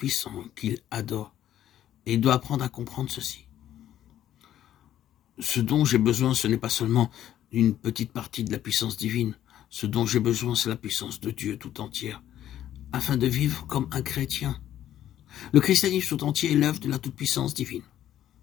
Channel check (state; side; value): quieter; right; 11.7 dB